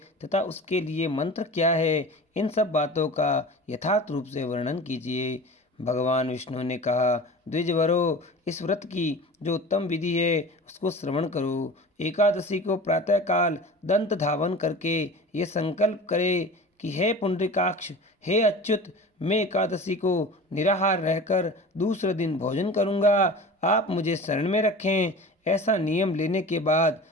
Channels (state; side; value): normal; both; correlation 0.36